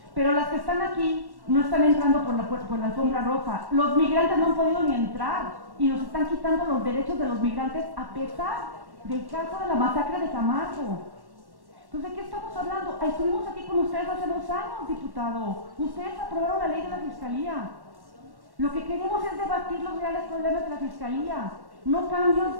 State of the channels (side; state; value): left; late; 1.1 ms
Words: Pero las que están aquí no están entrando por la alfombra roja. Los migrantes no han podido ni entrar y nos están quitando los derechos de los migrantes a pesar del caso de la masacre de Camargo. Entonces, ¿de qué estamos hablando? Estuvimos aquí con ustedes hace 2 años, diputado. Ustedes aprobaron la ley de la Fiscalía. Lo que queremos es debatir los reales problemas de la Fiscalía, no